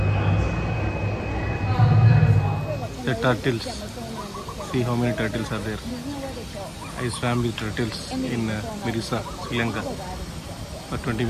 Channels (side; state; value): both; identical; correlation 1.00